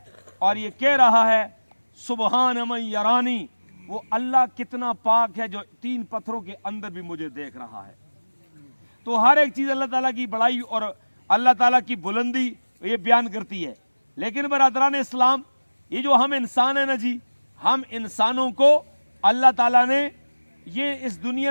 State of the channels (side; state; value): both; inverted; correlation -1.00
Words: اور یہ کہہ رہا ہے سبحان من یرانی، وہ اللہ کتنا پاک ہے جو 3 پتھروں کے اندر بھی مجھے دیکھ رہا ہے۔ تو ہر ایک چیز اللہ تعالیٰ کی بڑائی اور اللہ تعالیٰ کی بلندی یہ بیان کرتی ہے۔ لیکن برادران اسلام، یہ جو ہم انسان ہیں نا جی، ہم انسانوں کو اللہ تعالیٰ نے یہ اس